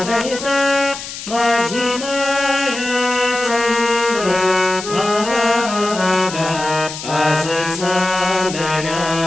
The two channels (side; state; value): left; noise; hiss, 10 dB below the sound